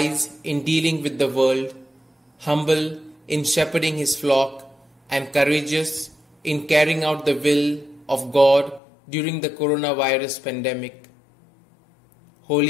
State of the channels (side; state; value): right; drops out; at 8.8 s